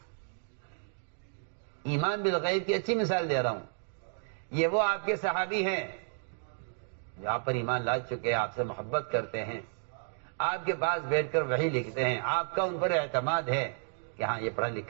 ایمان بالغیب کی اچھی مثال دے رہا ہوں. یہ وہ آپ کے صحابی ہیں جو آپ پر ایمان لا چکے، آپ سے محبت کرتے ہیں، آپ کے پاس بیٹھ کر وحی لکھتے ہیں، آپ کا ان پر اعتماد ہے کہ ہاں یہ پڑھا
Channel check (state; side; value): silent; left; digital silence